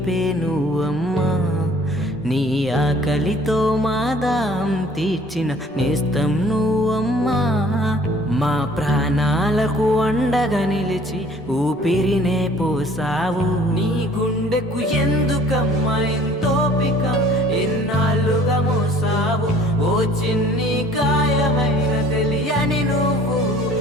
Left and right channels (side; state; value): both; normal; correlation 0.53